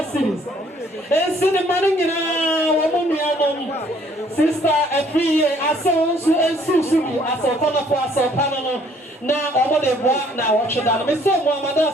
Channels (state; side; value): normal; both; correlation 0.62